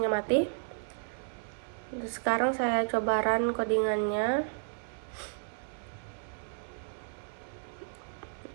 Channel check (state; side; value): silent; left; 56 dB below the other